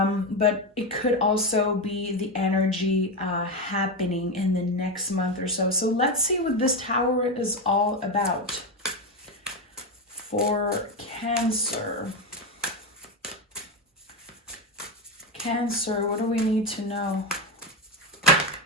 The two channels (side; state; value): both; normal; correlation 0.12